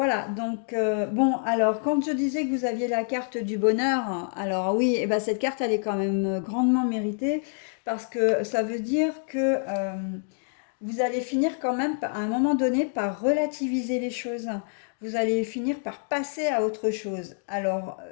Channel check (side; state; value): right; silent; digital silence